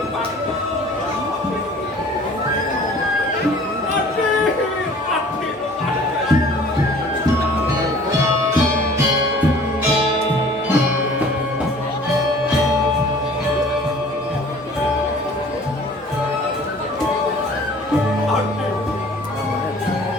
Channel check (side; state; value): both; normal; correlation 0.50